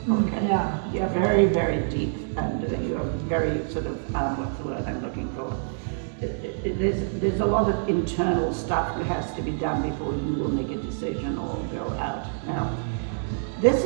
Okay. Yeah. You're very, very deep, and you're very sort of what's the word I'm looking for? There's a lot of internal stuff that has to be done before you will make a decision or go out. Now, this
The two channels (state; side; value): silent; left; digital silence